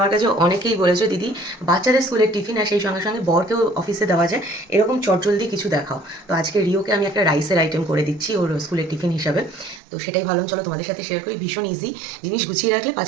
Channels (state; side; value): drops out; left; at 9.8 s